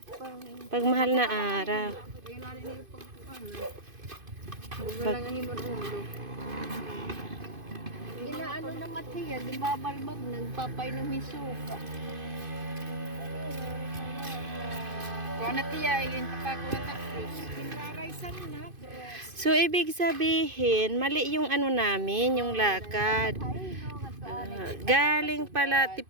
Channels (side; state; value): left; late; 2.5 ms